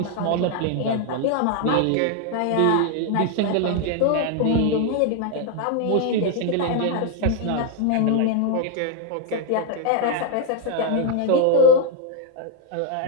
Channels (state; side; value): different; both; correlation 0.00